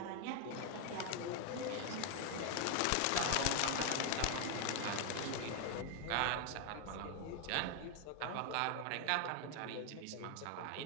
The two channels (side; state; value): both; different; correlation 0.01